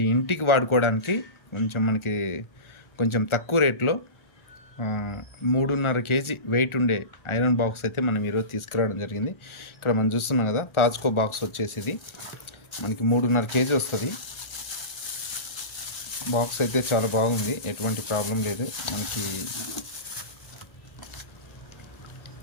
ఇంటికి వాడుకోవడానికి కొంచెం తక్కువ రేట్లో 3.5 kg వెయిట్ ఉండే ఐరన్ బాక్స్ అయితే మనం ఈరోజు తీసుకురావడం జరిగింది. ఇక్కడ మనం చూస్తున్నాం కదా, తాజ్కో బాక్స్ వచ్చేసి ఇది మనకి 3.5 kg వస్తుంది. బాక్స్ అయితే చాలా బాగుంది, ఎటువంటి ప్రాబ్లం లేదు. మనకి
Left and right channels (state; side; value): late; right; 1.4 ms